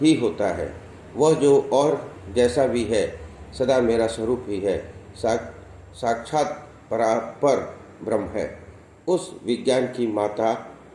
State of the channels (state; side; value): identical; both; correlation 1.00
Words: ही होता है। वह जो और जैसा भी है सदा मेरा स्वरूप ही है, साक्षात परापर ब्रह्म है। उस विज्ञान की माता